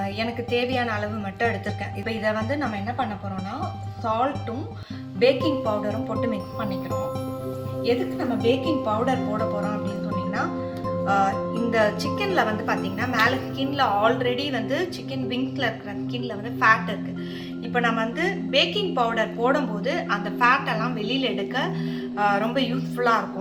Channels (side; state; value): both; identical; correlation 1.00